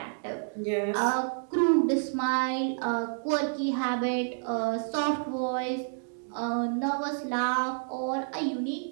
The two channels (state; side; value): silent; left; digital silence